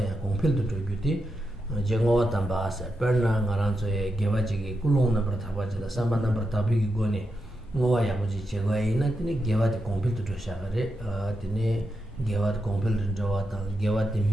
kongpildu chogyuti jengowa tambasa perna ngaranzo ya gewa jigi kulong nambar taba jida samba nambar tabi ki goni ngowa yabuji chegwa ina tine gewa de kompil tu shagare tine gewa de kompil jawa ta gewa de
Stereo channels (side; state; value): both; normal; correlation 0.86